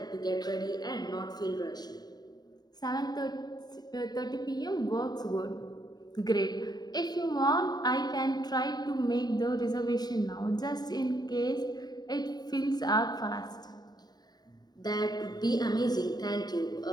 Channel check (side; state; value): right; late; 0.20 ms